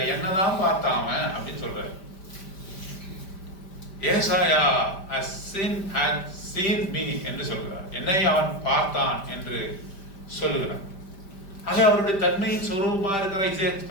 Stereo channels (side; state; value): right; late; 5.1 ms